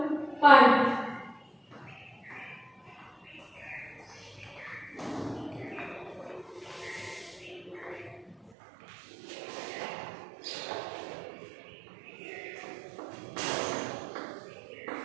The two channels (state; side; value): drops out; left; at 8.5 s